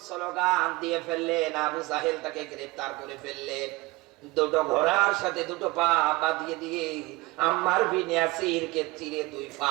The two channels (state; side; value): quieter; left; 21.7 dB